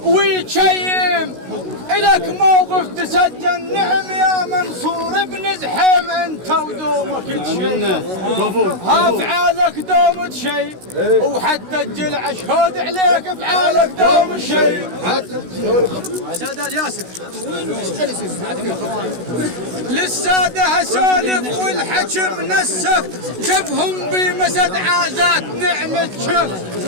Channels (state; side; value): late; left; 16 ms